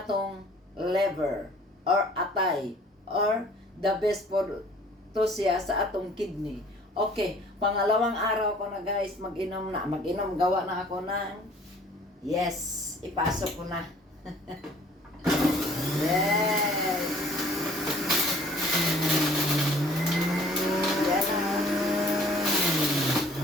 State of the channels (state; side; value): normal; both; correlation 0.54